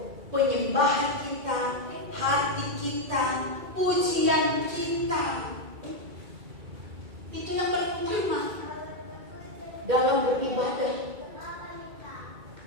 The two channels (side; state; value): left; late; 2.3 ms